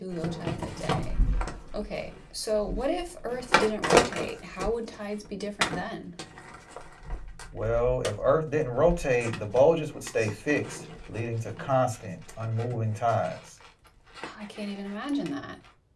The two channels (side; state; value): both; identical; correlation 1.00